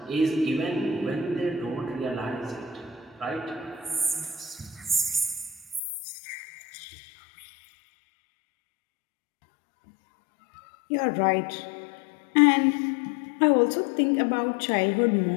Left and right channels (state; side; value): drops out; right; at 5.8 s